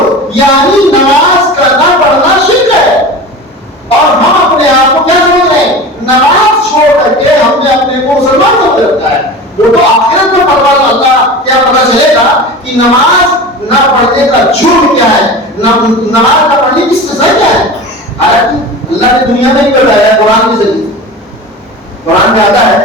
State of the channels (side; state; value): both; normal; correlation 0.33